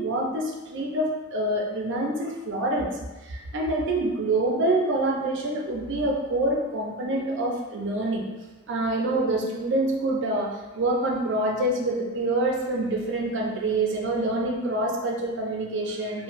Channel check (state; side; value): normal; both; correlation 0.20